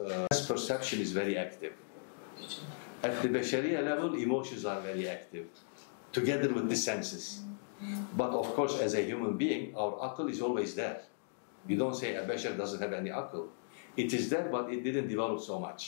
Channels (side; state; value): right; silent; digital silence